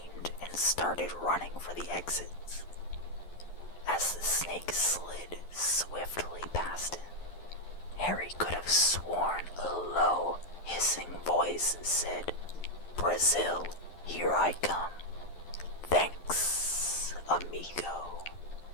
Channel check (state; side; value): late; right; 11 ms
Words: and started running for the exits. As the snake slid swiftly past him, Harry could have sworn a low, hissing voice said, "Brazil, here I come. Thanks, amigo."